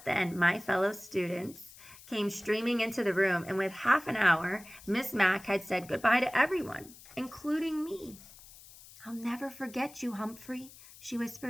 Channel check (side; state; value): left; noise; hiss, 20 dB below the sound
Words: then, my fellow students came streaming into the room, and with half an hour, Miss Mac had said goodbye to everyone, including me. "I'll never forget you, Humphrey," she